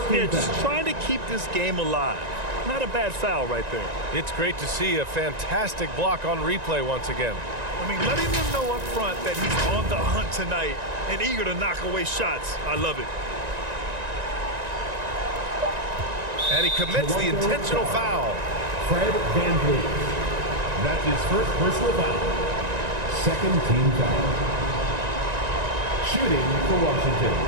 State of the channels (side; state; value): left; late; 1.9 ms